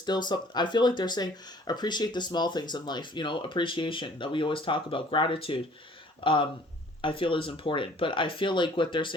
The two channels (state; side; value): normal; both; correlation 0.54